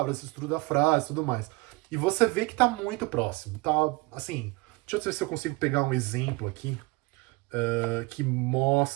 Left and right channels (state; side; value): quieter; left; 23.4 dB